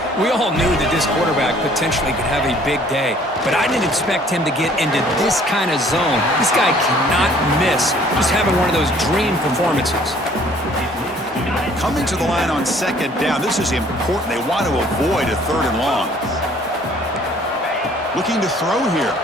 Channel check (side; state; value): both; normal; correlation 0.57